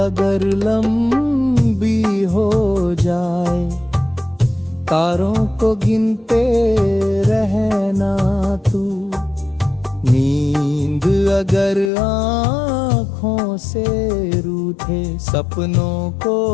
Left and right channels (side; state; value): right; drops out; at 11.9 s